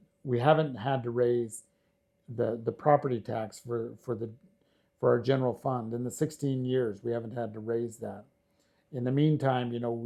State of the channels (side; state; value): both; identical; correlation 1.00